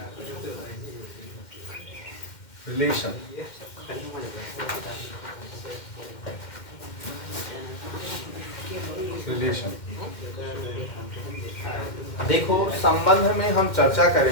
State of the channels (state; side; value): late; right; 2.1 ms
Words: रिलेशन, रिलेशन देखो, संबंध में हम चर्चा